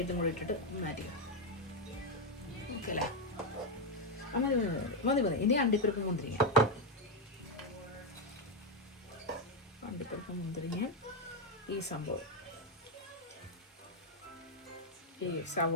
കൂടി ഇട്ടിട്ട് മാറ്റിക്കാം. ഓക്കെ അല്ലേ? മതി. ഇനി അണ്ടിപ്പരിപ്പ് മുന്തിരിങ്ങ ഈ സംഭവം, ഈ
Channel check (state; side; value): normal; both; correlation 0.04